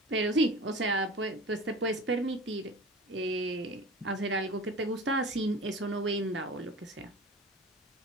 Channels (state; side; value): normal; both; correlation 0.36